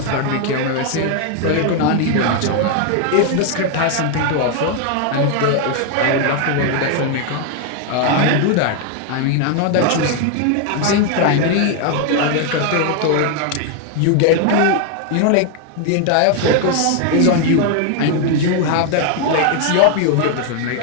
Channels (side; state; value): both; different; correlation 0.01